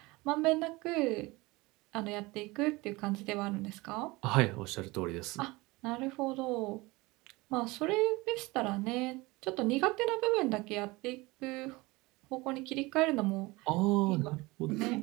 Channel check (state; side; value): quieter; left; 22.5 dB